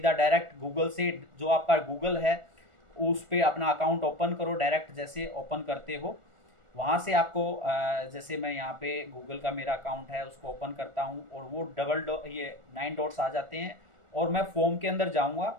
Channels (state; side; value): late; left; 1.4 ms